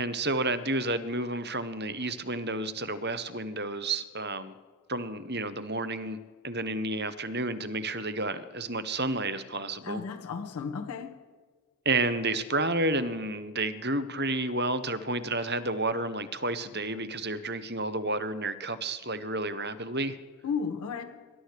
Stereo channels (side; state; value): both; normal; correlation 0.08